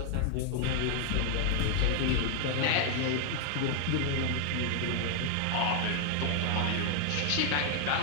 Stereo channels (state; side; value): different; both; correlation 0.00